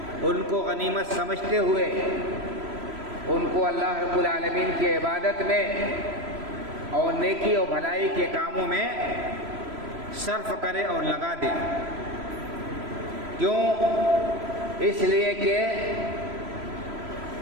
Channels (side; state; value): left; late; 3.0 ms